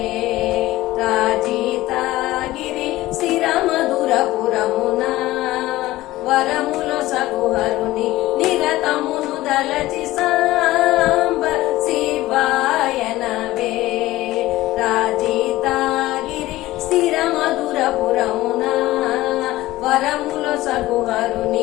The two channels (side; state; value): right; quieter; 17.1 dB